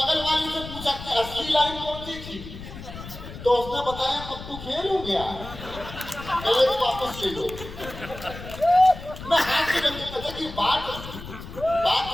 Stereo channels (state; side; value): noise; left; rumble, 12 dB below the sound